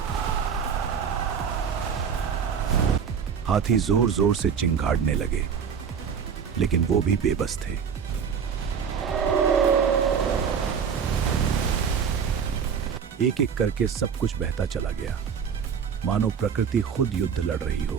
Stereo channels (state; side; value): quieter; left; 7.0 dB